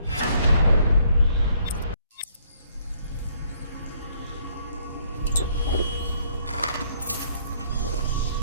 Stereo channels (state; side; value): inverted; both; correlation -0.66